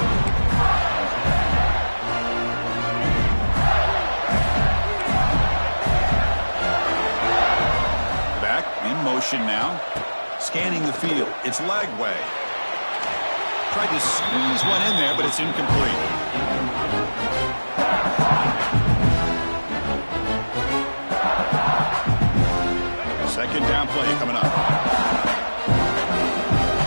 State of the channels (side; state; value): both; inverted; correlation -1.00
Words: Back in motion now. Scanning the field. It's Lagway. Tried to squeeze one in there, but it's incomplete. Second down play coming up.